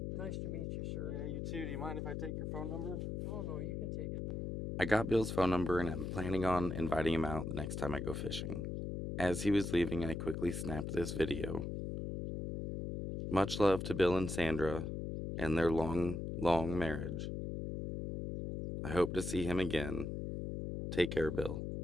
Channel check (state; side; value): noise; left; hum, 4 dB below the sound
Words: Nice to meet you, sir. Yeah, you too. Do you mind if I take your phone number? Oh, no, you can take it. I got Bill's phone number and I'm planning on inviting him out the next time I go fishing. As he was leaving, I quickly snapped this video. Much love to Bill and Sandra and their long, long marriage. I hope to see him again. Take care, Bill,